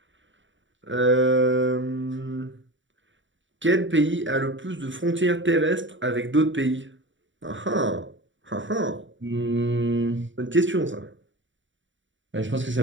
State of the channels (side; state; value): left; late; 0.55 ms